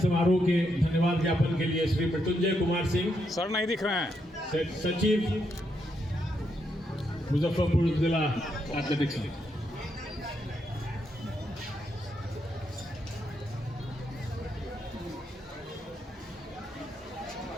के धन्यवाद ज्ञापन के लिए श्री मृत्युंजय कुमार सिंह, सर नहीं दिख रहे हैं, सचिव मुजफ्फरपुर जिला एथलेटिक्स।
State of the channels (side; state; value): both; normal; correlation 0.80